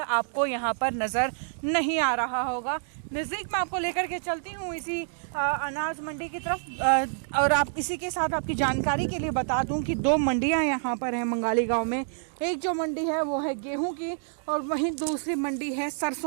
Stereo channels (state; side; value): silent; left; digital silence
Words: यहाँ पर नज़र नहीं आ रहा होगा। नज़दीक में आपको लेकर के चलती हूँ इसी अनाज मंडी की तरफ। और आप इसी के साथ आपकी जानकारी के लिए बता दूं कि 2 मंडियां यहाँ पर हैं मंगाली गांव में। एक जो मंडी है वो है गेहूं की, और वहीं दूसरी मंडी है